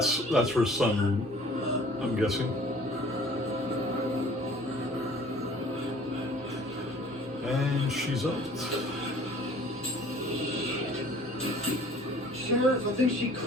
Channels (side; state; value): both; normal; correlation 0.51